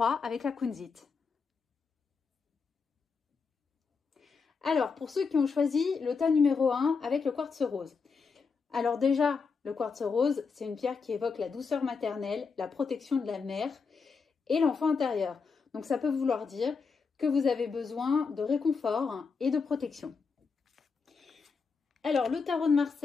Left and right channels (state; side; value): quieter; right; 5.1 dB